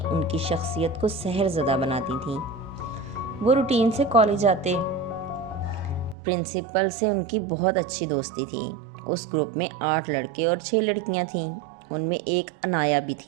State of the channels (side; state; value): left; drops out; at 6.2 s